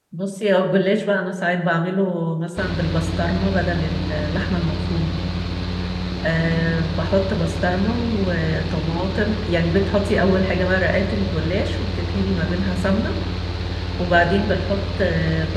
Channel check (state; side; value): identical; both; correlation 1.00